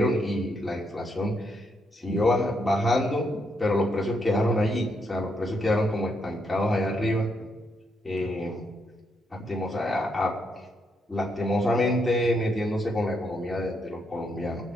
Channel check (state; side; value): normal; both; correlation 0.78